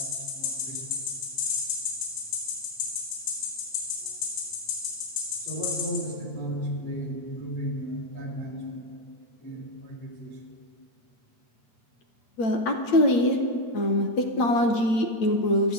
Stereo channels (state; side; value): late; right; 8.7 ms